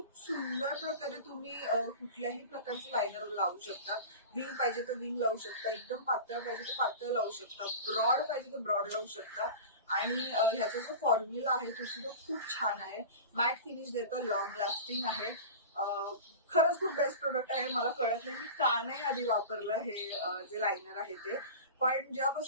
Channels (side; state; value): both; inverted; correlation -0.32